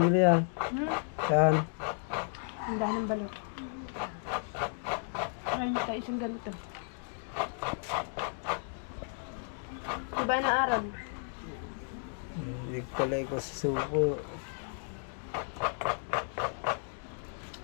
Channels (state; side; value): silent; right; 55 dB below the other